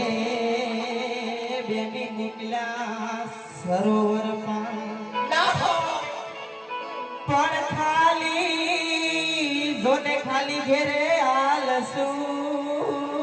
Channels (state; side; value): identical; both; correlation 1.00